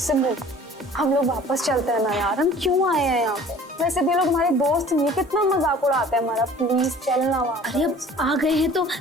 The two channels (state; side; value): normal; both; correlation 0.48